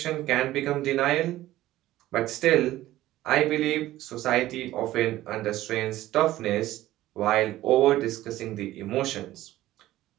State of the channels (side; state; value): left; quieter; 15.3 dB